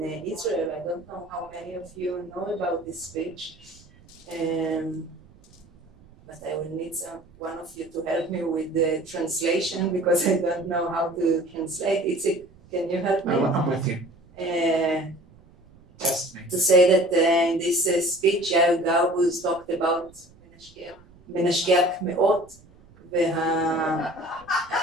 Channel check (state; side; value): noise; right; rumble, 26 dB below the sound